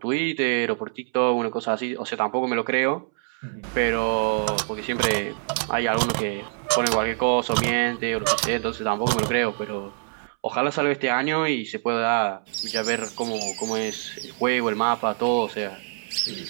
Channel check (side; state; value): left; silent; 62 dB below the other